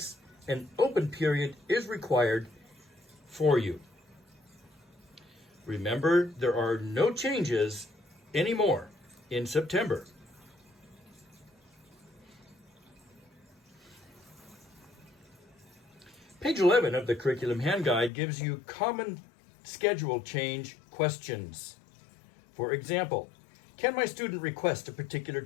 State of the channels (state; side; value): drops out; right; at 18.1 s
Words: an open period is required for you. Remember, there are no changes anymore in September. Page 11 of the Curriculum Hand Guide gives you common schedule change questions. For example, can my student request a particular